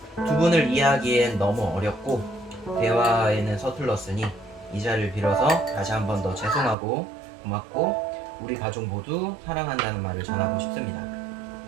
두 분을 이해하기엔 너무 어렵고 대화에는 서툴렀으니 이 자리를 빌어서 다시 한 번 더 죄송하고 고맙고 우리 가족 모두 사랑한다는 말을 전하고 싶습니다.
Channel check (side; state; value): left; drops out; at 6.8 s